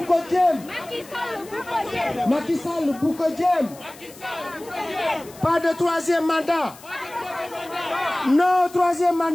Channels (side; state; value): left; noise; hiss, 21 dB below the sound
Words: Macky Sall le Boukodjem. Pas de troisième mandat. Non au troisième